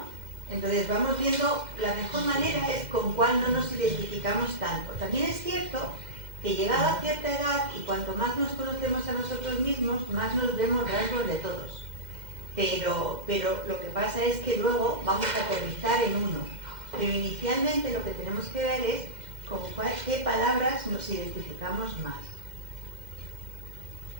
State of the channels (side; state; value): left; late; 2.1 ms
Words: Entonces vamos viendo, la mejor manera es con cuál no nos identificamos tanto. También es cierto que llegada a cierta edad y cuanto más nos conocemos a nosotros mismos, más nos vemos rasgos de todos. Pero lo que pasa es que luego vamos a aterrizar en uno. Pero inicialmente lo que tenemos que ver es con qué palabras nos identificamos más.